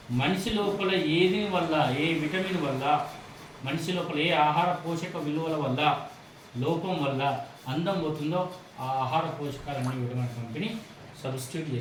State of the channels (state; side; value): identical; both; correlation 1.00